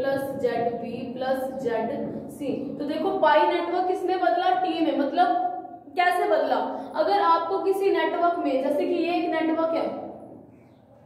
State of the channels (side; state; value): both; identical; correlation 1.00